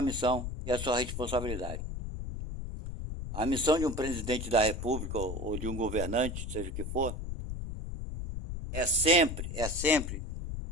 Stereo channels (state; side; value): noise; left; rumble, 6 dB below the sound